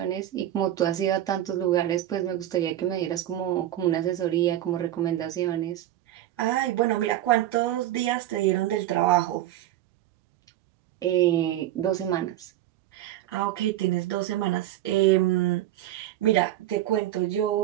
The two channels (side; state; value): left; quieter; 13.3 dB